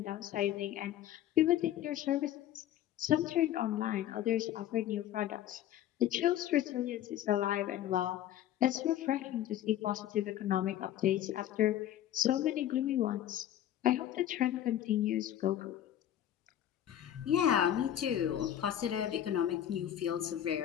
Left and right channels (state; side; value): quieter; right; 11.7 dB